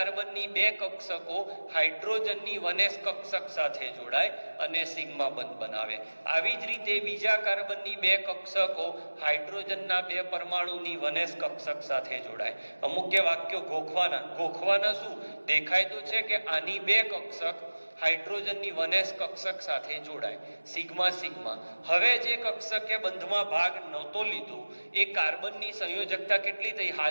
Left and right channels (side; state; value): both; inverted; correlation -1.00